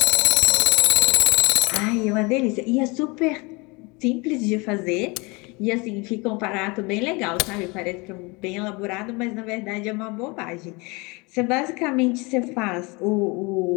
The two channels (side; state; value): right; quieter; 27.1 dB